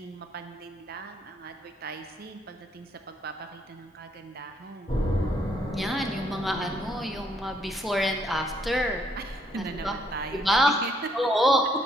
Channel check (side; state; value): both; normal; correlation 0.70